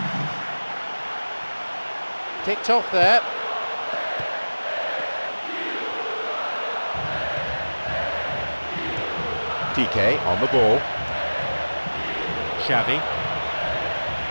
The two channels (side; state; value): both; inverted; correlation -1.00